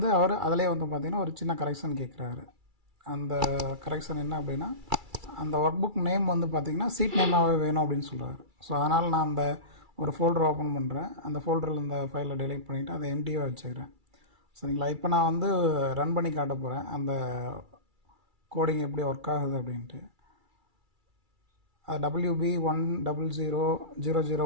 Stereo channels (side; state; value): left; late; 2.3 ms